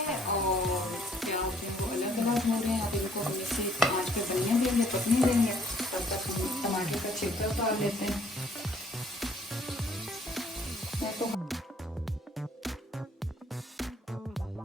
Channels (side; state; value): both; normal; correlation 0.62